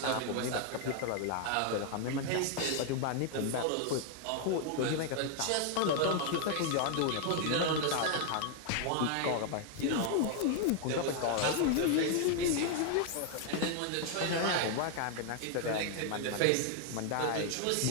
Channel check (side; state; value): both; different; correlation 0.00